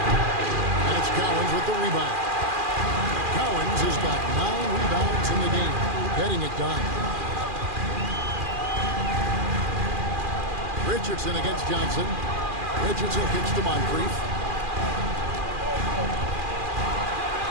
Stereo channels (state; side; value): late; left; 2.4 ms